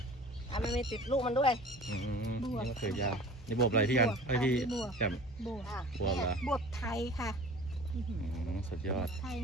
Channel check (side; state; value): both; normal; correlation 0.43